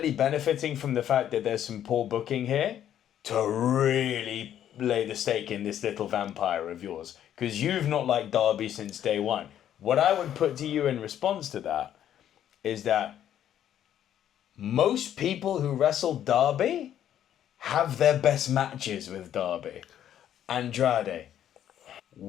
benefiting from the fact that there's some poor booking here to really lay the stake in this little vampire of yours. Because you've not liked Darby since day one. What I would put to you in response to that is that most people who wrestle Darby have their best matches with Darby. Andrade,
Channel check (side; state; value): right; quieter; 10.6 dB